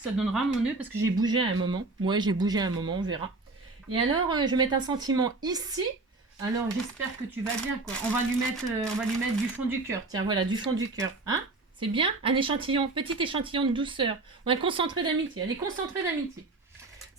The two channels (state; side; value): quieter; left; 3.4 dB